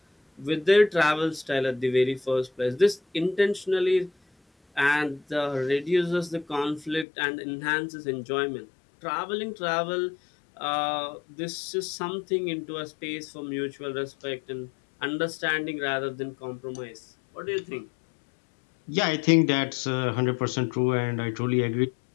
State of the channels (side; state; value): right; drops out; at 7.1 s